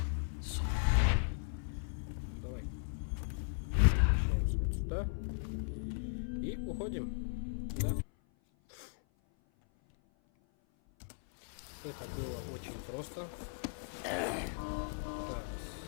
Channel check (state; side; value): silent; right; 53 dB below the other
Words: Давай. Возвращаемся вот сюда. И уходим. Да. Это было очень просто. Так.